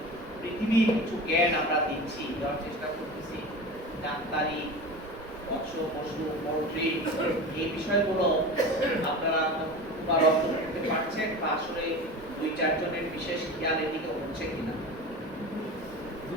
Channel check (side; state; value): both; normal; correlation 0.31